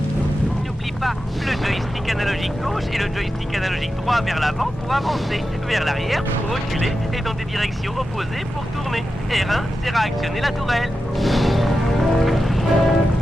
N'oublie pas, le joystick analogique gauche et le joystick analogique droit vers l'avant pour avancer, vers l'arrière pour reculer et dans des directions opposées pour tourner. R1 sert à actionner la tourelle.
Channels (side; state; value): both; normal; correlation 0.91